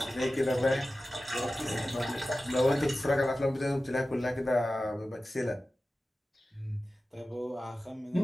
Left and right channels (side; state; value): both; normal; correlation 0.95